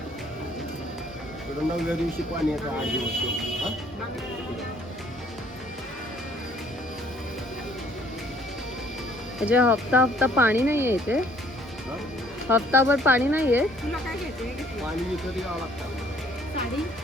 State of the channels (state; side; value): normal; both; correlation 0.60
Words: नवव्या दिवशी पाणी येतं 8 दिवस। म्हणजे हप्ता हप्ता पाणी नाहीये इथे, हप्ताभर पाणी नाहीये। पाणी विकत यावं लागतं। साडी